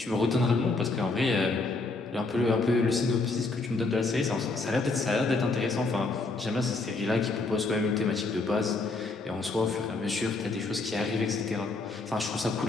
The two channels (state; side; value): quieter; right; 3.6 dB